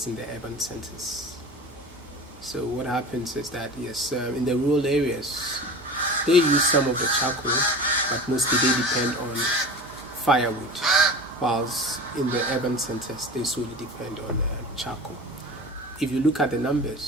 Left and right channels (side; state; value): both; normal; correlation 0.34